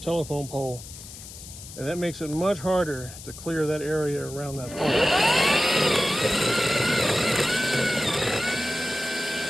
pole, and that makes it much harder to clear that area around that pole.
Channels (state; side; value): noise; left; hiss, 15 dB below the sound